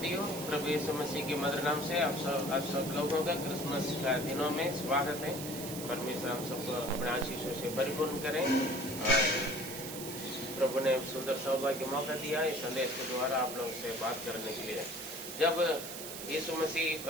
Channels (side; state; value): right; noise; hiss, 8 dB below the sound